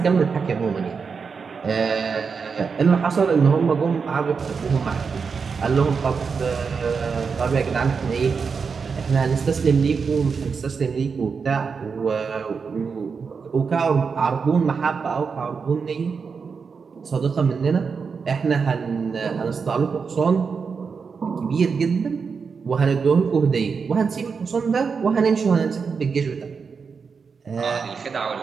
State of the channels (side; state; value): left; quieter; 5.5 dB